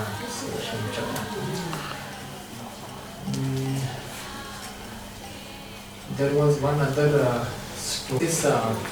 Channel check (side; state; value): both; identical; correlation 1.00